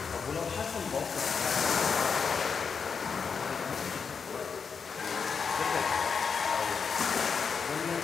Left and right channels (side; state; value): right; quieter; 5.9 dB